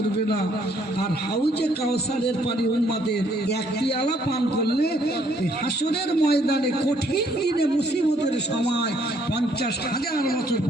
না। আর হাউজে কাউসারের পানি উম্মতের এক পেয়ালা পান করলে হাসরের ময়দানে কঠিন দিনে মুসিবতের সময় 50,000 বছর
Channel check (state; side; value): normal; both; correlation 0.66